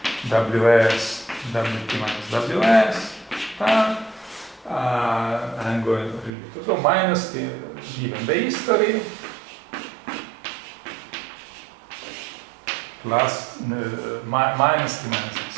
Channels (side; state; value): left; drops out; at 6.3 s